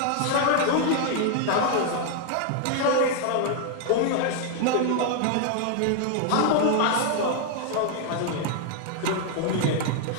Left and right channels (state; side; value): different; both; correlation 0.00